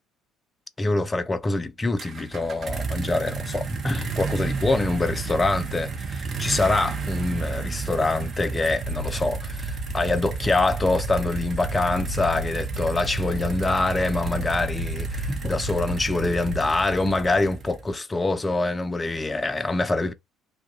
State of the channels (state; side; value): normal; both; correlation 0.86